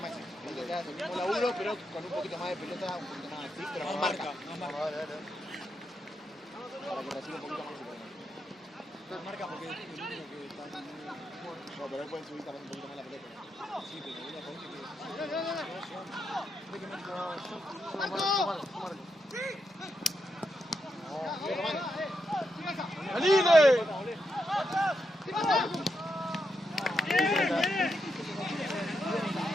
Maxi. El mismo laburo, pero con un poquito más de pelota, un poquito más así, pero con marca. Para que reciba un poquito más. Marca porque es el único que está en No, pero él puede subir también un poquito más la pelota. Sí, pero una ponte que... ¡Aline!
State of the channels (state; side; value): normal; both; correlation 0.84